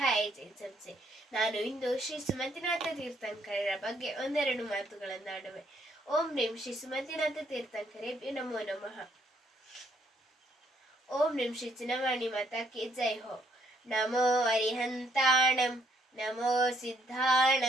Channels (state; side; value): normal; both; correlation 0.70